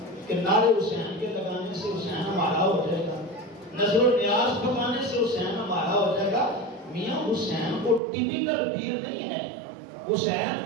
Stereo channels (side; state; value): left; drops out; at 8.0 s